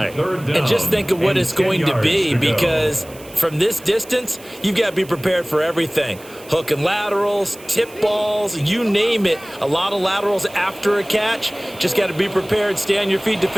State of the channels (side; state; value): right; noise; hiss, 21 dB below the sound